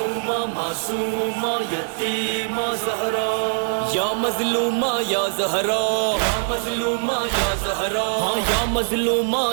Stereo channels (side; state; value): left; silent; digital silence